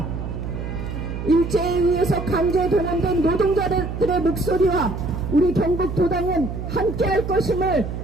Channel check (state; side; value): noise; right; hum, 6 dB below the sound